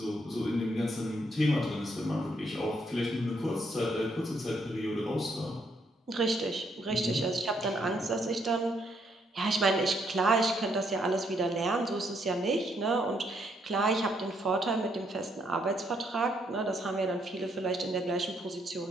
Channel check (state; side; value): normal; both; correlation 0.73